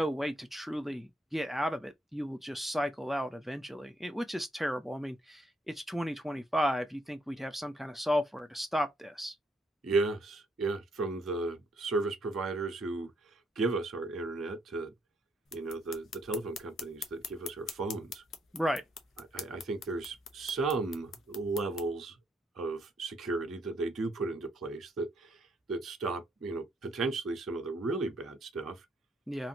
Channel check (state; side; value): normal; both; correlation 0.73